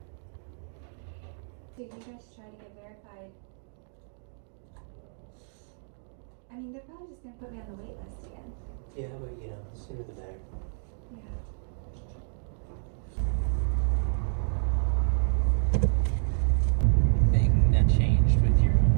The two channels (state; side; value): silent; left; digital silence